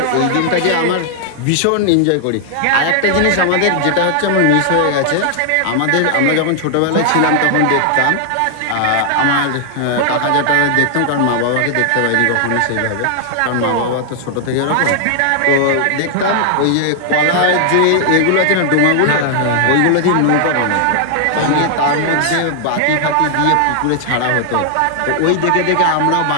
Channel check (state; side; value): different; both; correlation 0.00